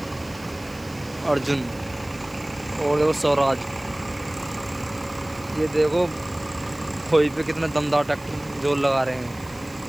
अर्जुन और देखो स्वराज। ये देखो खोई पे कितना दमदार ट्रैक्टर जोर लगा रहे हैं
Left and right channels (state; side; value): noise; right; hiss, 23 dB below the sound